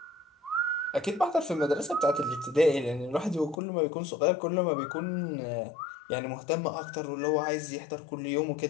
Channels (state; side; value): drops out; right; at 3.6 s